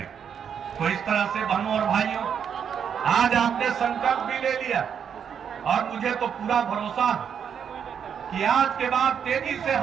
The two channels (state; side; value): quieter; left; 7.7 dB